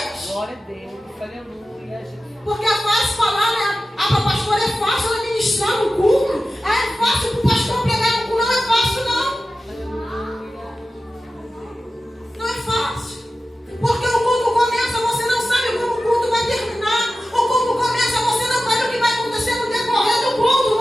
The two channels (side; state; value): both; normal; correlation 0.94